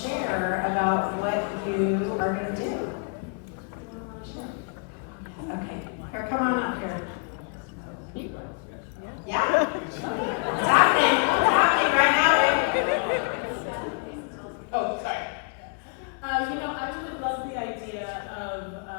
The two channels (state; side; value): quieter; right; 37.3 dB